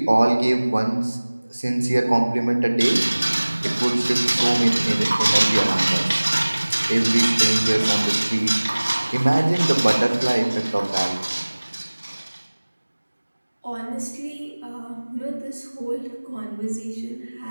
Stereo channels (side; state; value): both; inverted; correlation -1.00